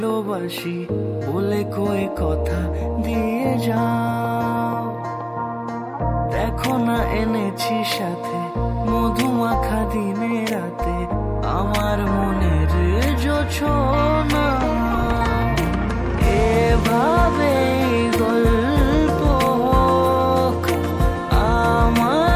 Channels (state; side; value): identical; both; correlation 1.00